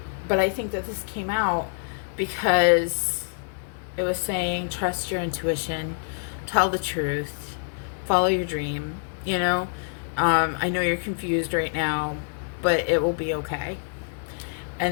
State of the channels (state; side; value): silent; right; digital silence